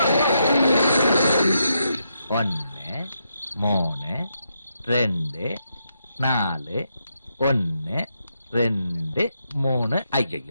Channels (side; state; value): both; inverted; correlation -0.81